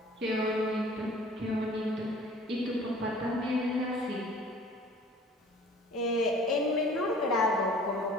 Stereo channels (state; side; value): normal; both; correlation 0.49